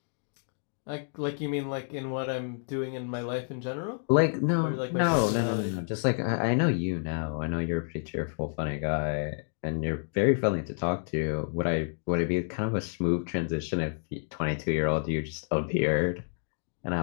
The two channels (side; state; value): right; silent; digital silence